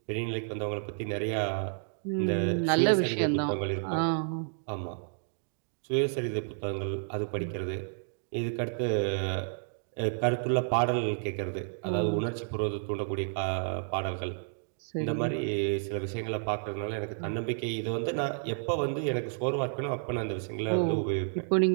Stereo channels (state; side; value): silent; left; digital silence